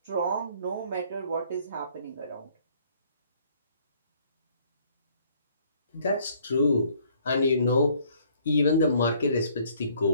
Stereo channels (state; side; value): inverted; both; correlation -0.62